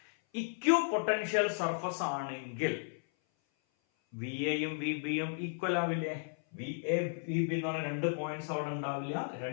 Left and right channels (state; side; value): silent; right; 55 dB below the other